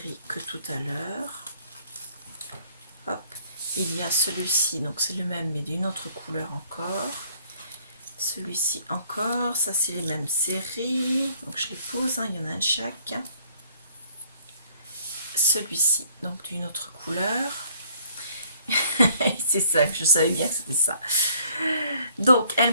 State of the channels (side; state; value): both; inverted; correlation -0.59